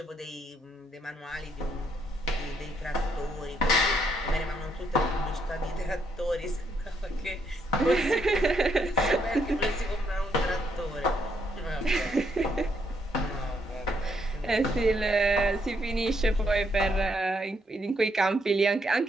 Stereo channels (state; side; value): normal; both; correlation 0.74